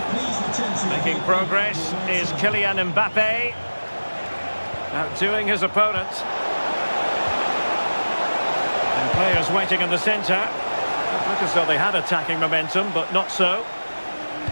Making progress is Kylian Mbappe. Outdoing his opponent. And players waiting in the centre. It looked as though they had attacking momentum, but not so.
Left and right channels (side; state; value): both; inverted; correlation -1.00